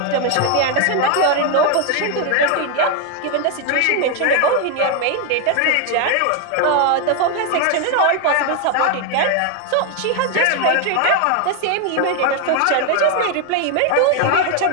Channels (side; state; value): both; different; correlation 0.01